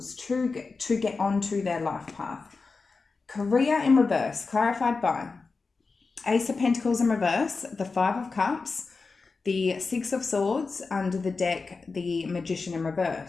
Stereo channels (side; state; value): right; quieter; 4.3 dB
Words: to get onto their life path. Career in reverse, clarified by Ace of Pentacles in reverse, the Five of Cups, the Six of Swords, under the deck, the Magician in